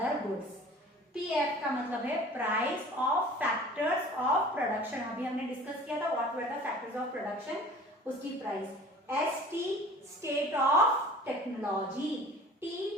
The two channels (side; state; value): both; normal; correlation 0.45